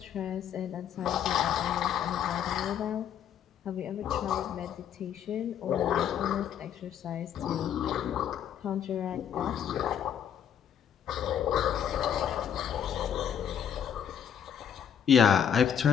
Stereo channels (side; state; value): right; quieter; 8.8 dB